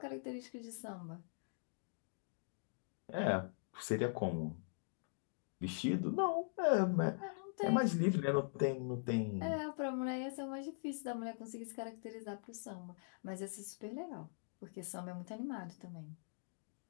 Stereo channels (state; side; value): silent; right; digital silence